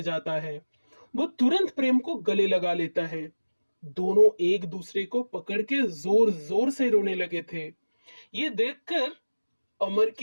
जाता है। वो तुरंत प्रेम को गले लगा लेता है। दोनों एक दूसरे को पकड़ के जोर जोर से रोने लगे थे। ये देखकर अमर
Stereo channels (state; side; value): inverted; both; correlation -1.00